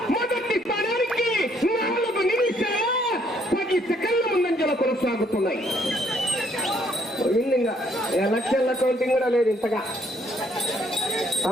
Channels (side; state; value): both; normal; correlation 0.67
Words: మొదటి స్థానానికి 4 నిమిషాల 10 సెకండ్ల ముందంజలో కొనసాగుతున్నాయి. ఇంకా ఎలక్షన్ల కౌంటింగ్ కూడా లేదు ఇంతగా.